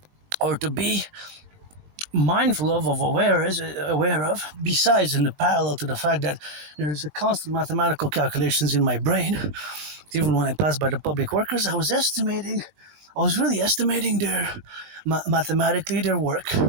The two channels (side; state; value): left; late; 20 ms